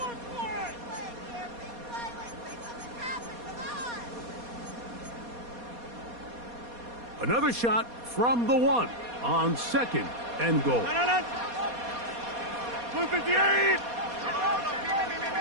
Another shot from the 1 on second and goal. Blue 58!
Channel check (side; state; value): left; late; 4.2 ms